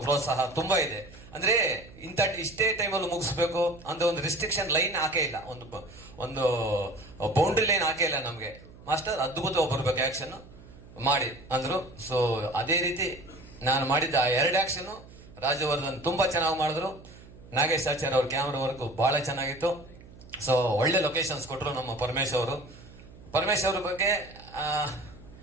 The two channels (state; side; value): noise; right; hum, 20 dB below the sound